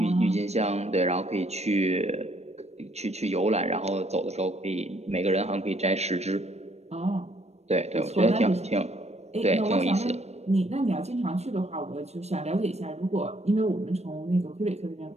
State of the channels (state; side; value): late; left; 0.31 ms